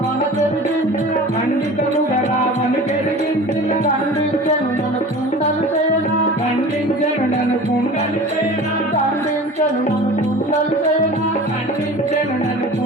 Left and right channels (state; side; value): normal; both; correlation 0.39